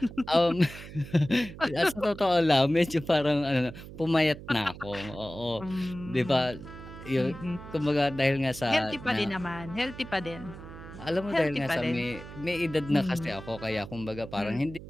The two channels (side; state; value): right; noise; hum, 14 dB below the sound